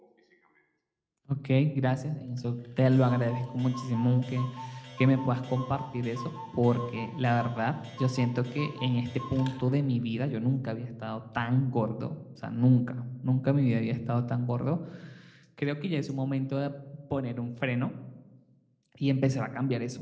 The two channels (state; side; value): identical; both; correlation 1.00